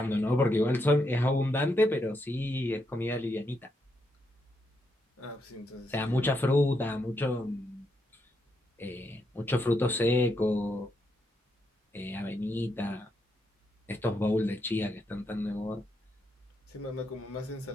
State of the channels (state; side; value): normal; both; correlation 0.80